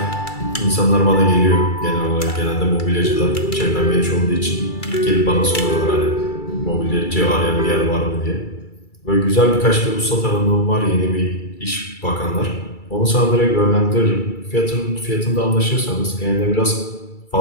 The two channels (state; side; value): late; right; 2.3 ms